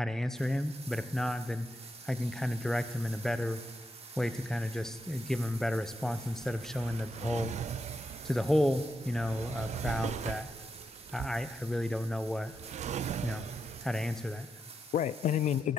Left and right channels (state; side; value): normal; both; correlation 0.84